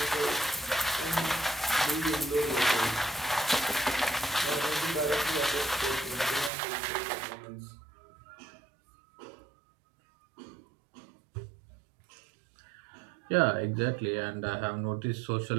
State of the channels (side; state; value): left; drops out; at 6.5 s